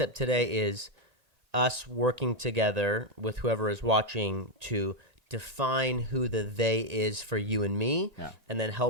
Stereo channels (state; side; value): late; left; 1.9 ms